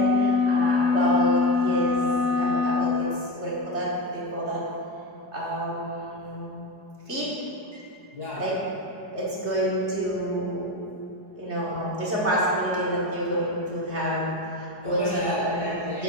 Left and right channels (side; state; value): left; late; 4.8 ms